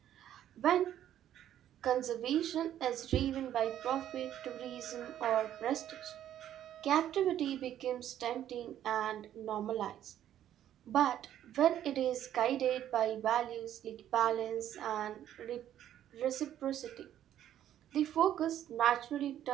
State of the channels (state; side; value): quieter; left; 11.3 dB